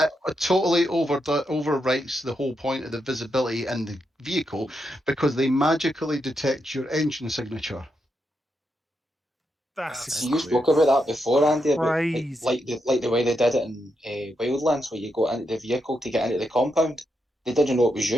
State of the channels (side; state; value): both; normal; correlation 0.83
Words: It totally overwrites the whole point of the visibility in the vehicle because they magically detect your engine signature. that's That's See, you fun. spoke about that before, Andy, about crazy. the way they did it in Wildlands, where you go into the vehicle to get into the compound. They didn't know it was